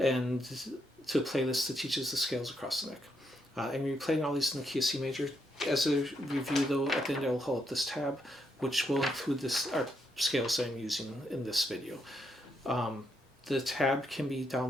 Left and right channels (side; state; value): both; normal; correlation 0.79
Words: to a playlist that teaches the scales across the neck. And you're playing all these in the key of C major. As a review though, at the end I'll hold up this tab, which will include this scales that I'm using in this video. The tab can be